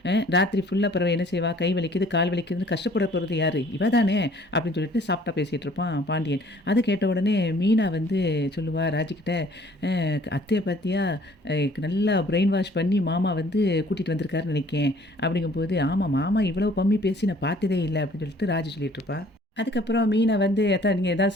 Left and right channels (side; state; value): both; normal; correlation 0.56